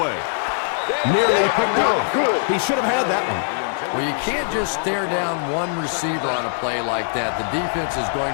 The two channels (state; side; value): silent; right; digital silence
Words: Nearly picked off. He should have had that one. Well, you can't just stare down one receiver on a play like that. The defense is going